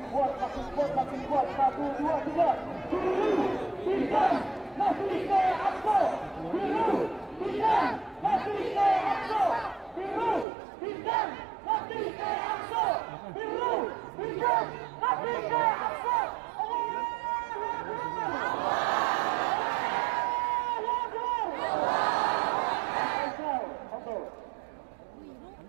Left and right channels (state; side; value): drops out; left; at 10.5 s